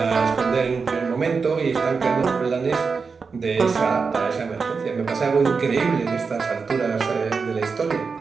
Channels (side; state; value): left; quieter; 5.0 dB